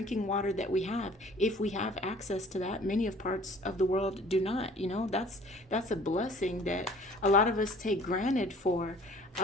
water that we have, if we have access to that. Many of parts of the world do not. You know, that's a blessing that a lot of us take granted for,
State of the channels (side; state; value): both; normal; correlation 0.51